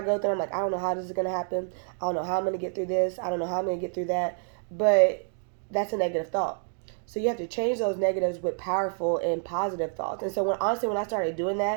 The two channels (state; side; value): silent; left; digital silence